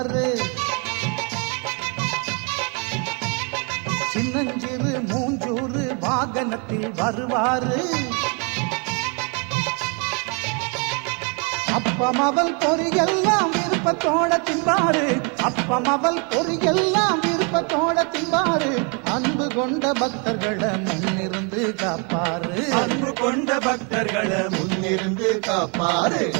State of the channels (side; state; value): left; quieter; 35.0 dB